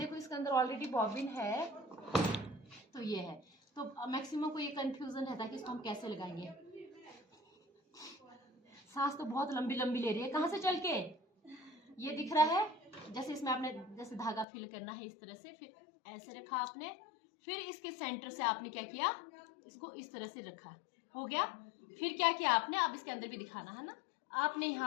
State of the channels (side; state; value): right; drops out; at 14.5 s